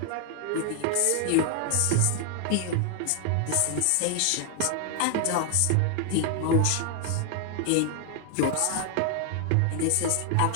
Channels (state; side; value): different; both; correlation 0.00